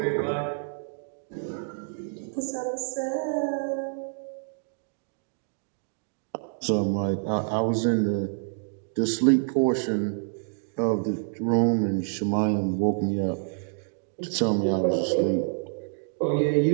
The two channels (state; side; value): silent; left; digital silence